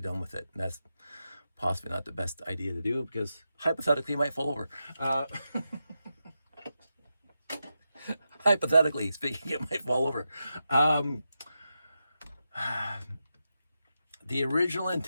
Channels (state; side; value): inverted; both; correlation -0.88